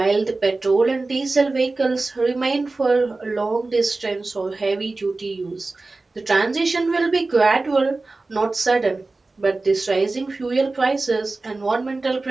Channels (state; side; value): quieter; left; 3.4 dB